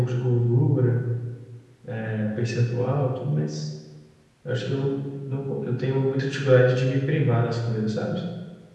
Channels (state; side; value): identical; both; correlation 1.00